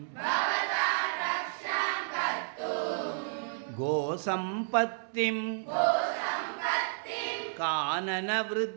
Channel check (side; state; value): left; silent; 57 dB below the other